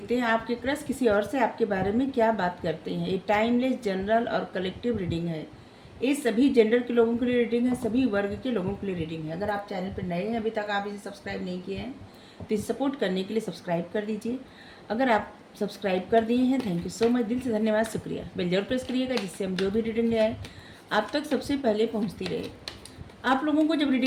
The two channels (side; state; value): both; identical; correlation 1.00